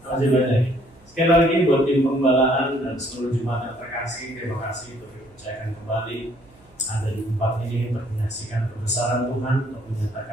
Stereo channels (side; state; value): right; noise; hum, 29 dB below the sound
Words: Masih banyak. Sekali lagi buat tim pembalaan dan seluruh jemaat yang terkasih, terima kasih untuk dipercayakan kembali ada di tempat ini untuk menyaksikan kebesaran Tuhan, untuk